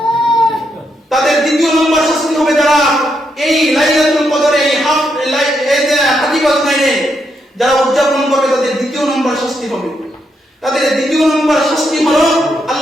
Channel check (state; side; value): normal; both; correlation 0.80